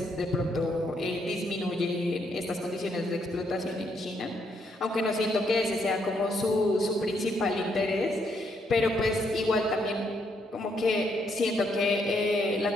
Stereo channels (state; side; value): normal; both; correlation 0.74